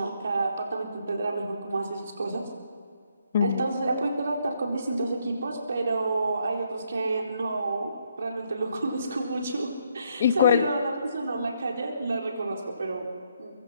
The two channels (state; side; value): inverted; both; correlation -0.73